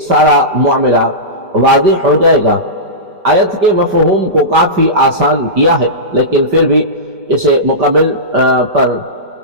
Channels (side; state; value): left; late; 5.1 ms